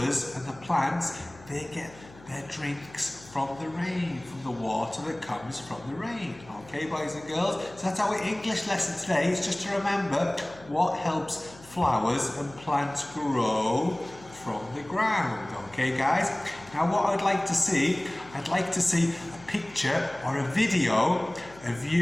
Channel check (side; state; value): left; noise; hum, 22 dB below the sound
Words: and the plants, they get their drinks from the rain, from the water that comes from the rain. Okay, boys and girls? So that's our English lesson today. It's just to remember what helps flowers and plants grow from the ground. Okay, guys? Now what I'd like to see a picture or a video of